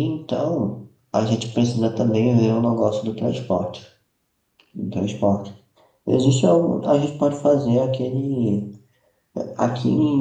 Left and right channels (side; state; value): both; identical; correlation 1.00